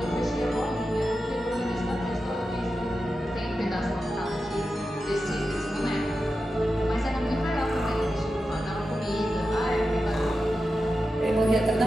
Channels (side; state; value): both; normal; correlation 0.91